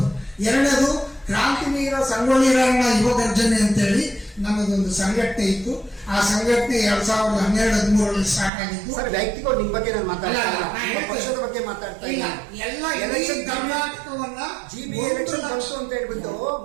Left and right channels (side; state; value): left; drops out; at 8.5 s